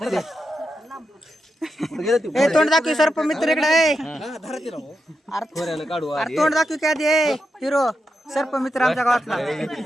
ए तोंड दाखव सर्पमित्र इकडे काढू अरे तोंड दाखव काय दे हिरो सर्पमित्र आमच्या गावातला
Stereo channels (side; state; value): both; normal; correlation 0.86